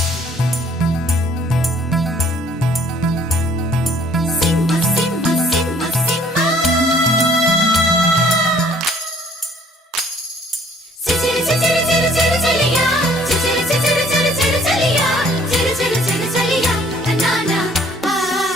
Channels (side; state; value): both; normal; correlation 0.58